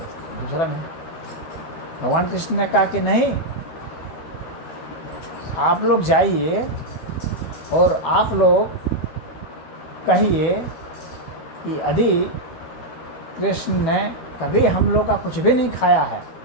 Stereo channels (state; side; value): late; right; 12 ms